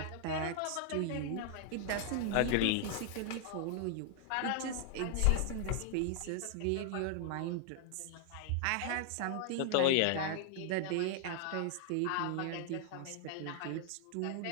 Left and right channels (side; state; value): both; different; correlation 0.00